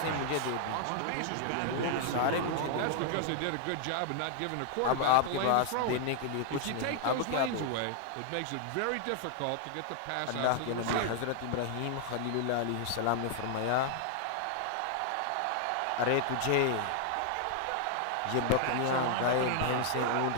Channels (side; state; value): both; different; correlation 0.00